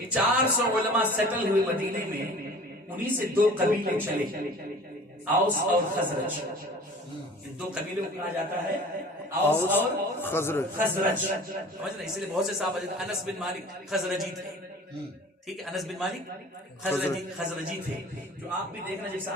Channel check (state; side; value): normal; both; correlation 0.44